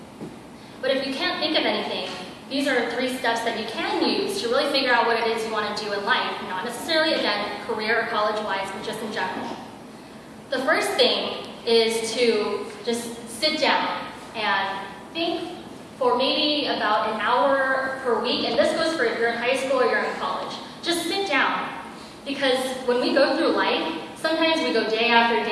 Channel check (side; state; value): both; identical; correlation 1.00